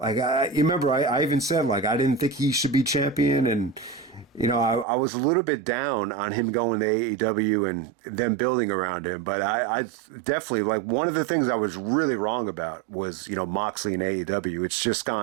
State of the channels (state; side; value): drops out; left; at 4.9 s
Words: you remember, I even said, like, I didn't think he should be champion. And, I was a little bit down on him going to AEW and them building around him. But I definitely, like, one of the things I was really wrong about was, Moxley and AEW. It's just